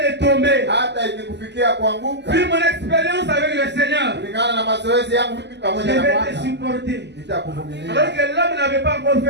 de tomber, hata ikikufikia kuanguka, vu mon expérience avec le Seigneur, kulingana na mazoezi yangu mimi je pamoja na vais te Bwana, supporter. nitakuvumilia. Alors que l'homme n'avait pas encore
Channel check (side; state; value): left; late; 0.50 ms